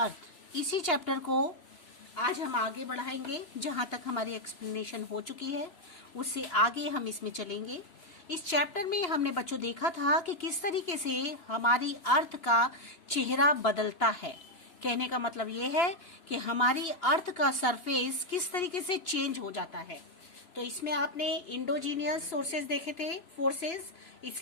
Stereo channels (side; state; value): right; late; 2.9 ms